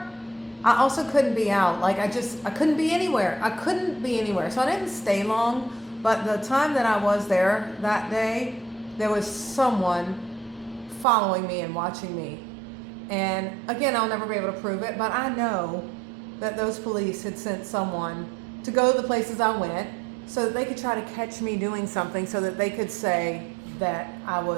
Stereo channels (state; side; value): drops out; left; at 11.1 s